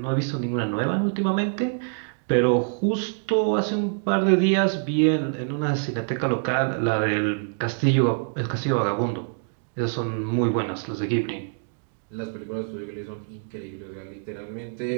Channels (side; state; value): left; silent; digital silence